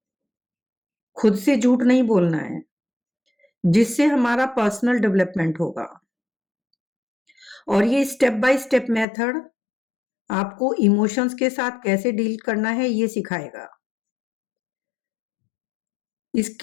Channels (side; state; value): right; drops out; at 9.1 s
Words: खुद से झूठ नहीं बोलना है, जिससे हमारा पर्सनल डेवलपमेंट होगा। और ये स्टेप बाय स्टेप मेथड आपको इमोशंस के साथ कैसे डील करना है ये सिखाएगा।